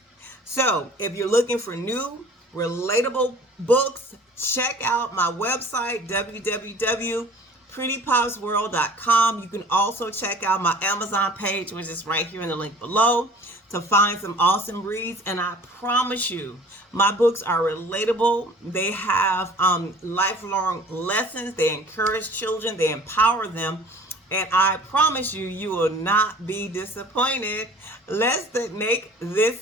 So, if you're looking for new, relatable books, check out my website, www.prettypopsworld.com. You can also check out my Amazon page, which is right here in the link below, to find some awesome reads. And I promise you, my books are relatable. They have lifelong lessons. They encourage children. They empower them. And I promise you, you will not be disappointed. Let's make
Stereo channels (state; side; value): normal; both; correlation 0.47